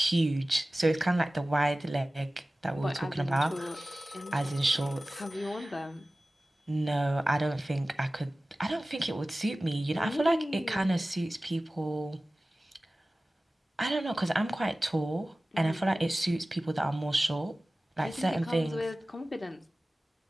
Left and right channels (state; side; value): normal; both; correlation 0.97